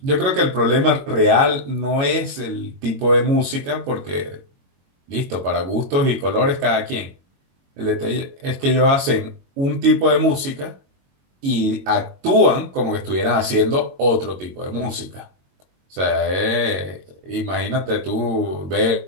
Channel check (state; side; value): late; left; 22 ms